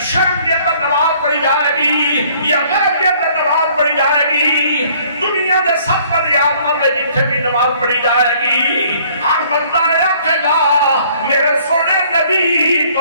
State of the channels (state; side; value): inverted; both; correlation -0.59